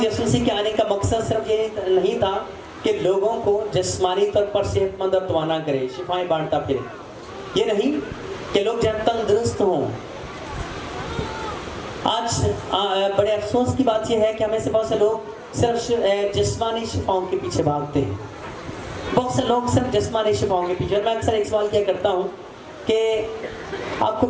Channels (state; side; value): identical; both; correlation 1.00